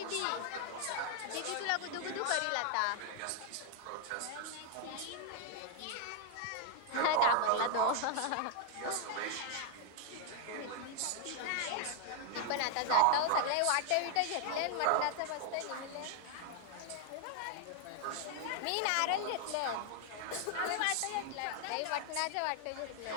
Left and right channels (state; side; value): different; both; correlation 0.00